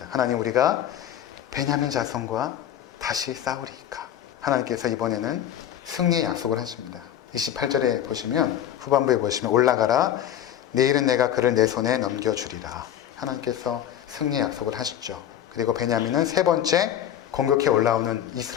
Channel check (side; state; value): right; quieter; 10.6 dB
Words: 하나님, 우리가 베냐민 자손과 다시 싸우리이까? 하나님께서 이번에는 승리의 약속을 하십니다. 28절에 보시면, 후반부에 보시면, 올라가라, 내일은 내가 그를 내 손에 넘겨주리라. 하나님께서 승리의 약속을 하시죠. 그리고 베냐민은 세 번째 공격해 올라오는